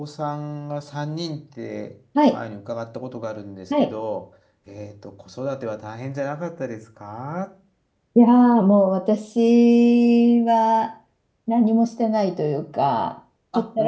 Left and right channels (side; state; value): both; identical; correlation 1.00